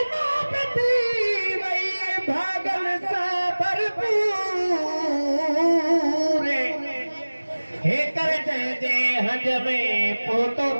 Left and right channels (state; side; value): inverted; both; correlation -1.00